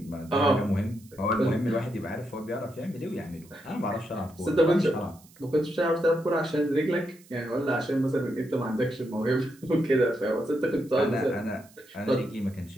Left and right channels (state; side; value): noise; right; hiss, 26 dB below the sound